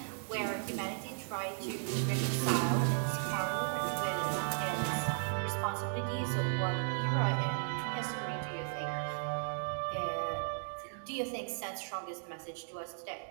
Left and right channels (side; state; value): left; silent; digital silence